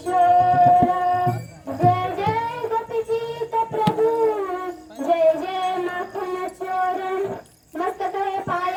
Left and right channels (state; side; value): identical; both; correlation 1.00